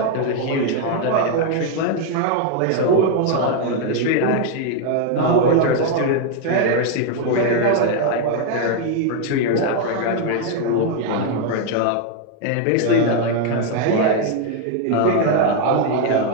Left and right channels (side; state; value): both; different; correlation 0.00